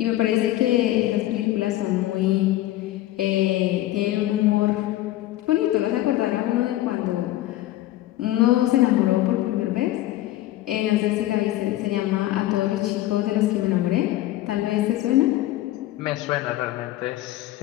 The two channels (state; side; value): quieter; right; 15.2 dB